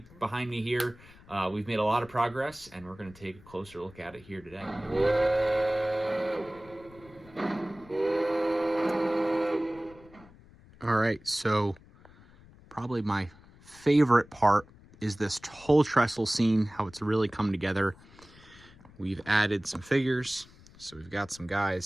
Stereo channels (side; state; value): left; noise; rumble, 24 dB below the sound